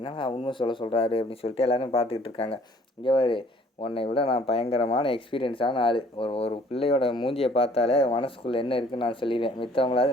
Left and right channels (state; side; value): normal; both; correlation 0.57